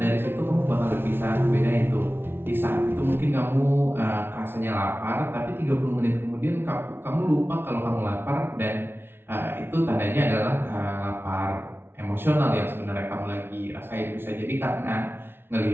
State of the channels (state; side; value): late; left; 0.11 ms